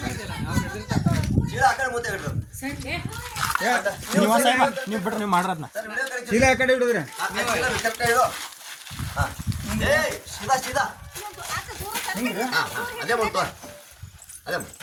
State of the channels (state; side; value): identical; both; correlation 1.00